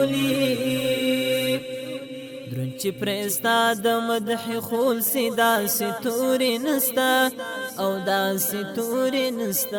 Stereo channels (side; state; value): both; identical; correlation 1.00